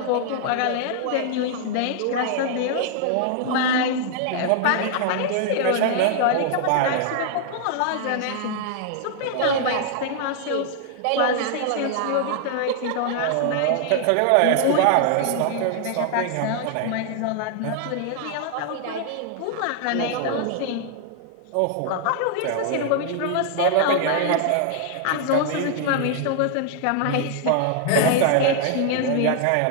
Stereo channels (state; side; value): different; both; correlation 0.00